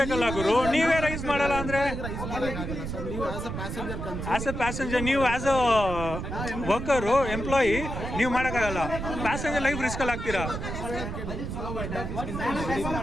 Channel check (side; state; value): right; noise; rumble, 5 dB below the sound